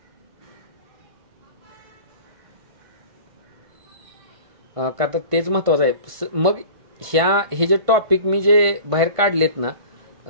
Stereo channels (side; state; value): left; late; 1.5 ms